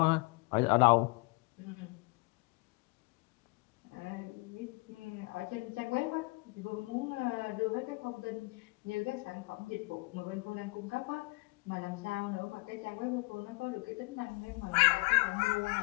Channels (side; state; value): right; quieter; 26.8 dB